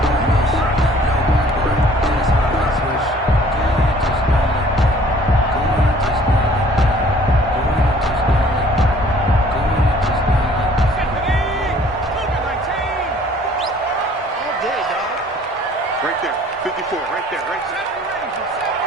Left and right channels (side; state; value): both; normal; correlation 0.55